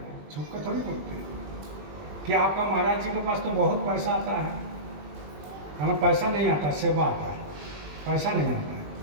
छुप कर थोड़ी बोलते हैं कि आपका महाराज जी के पास तो बहुत पैसा आता है। हमें पैसा नहीं आता, सेवा आता है, पैसा नहीं आता है।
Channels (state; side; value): late; left; 21 ms